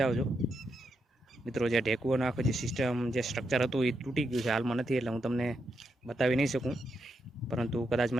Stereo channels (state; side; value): normal; both; correlation 0.83